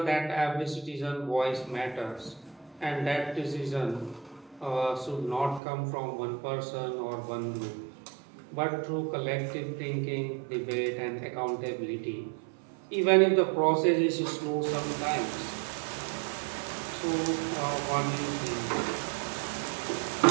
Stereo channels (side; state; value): left; drops out; at 5.6 s